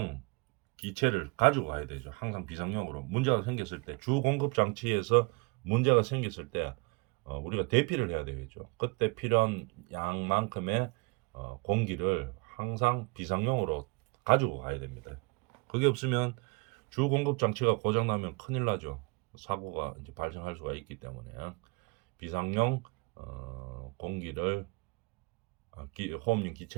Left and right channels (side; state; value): left; quieter; 29.4 dB